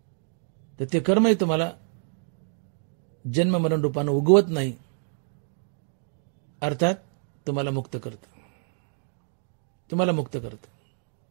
तर ते कर्मही तुम्हाला जन्म मरण रूपानं उगवत नाही, अर्थात तुम्हाला मुक्त करतं. तुम्हाला मुक्त करतं.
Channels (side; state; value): left; silent; 56 dB below the other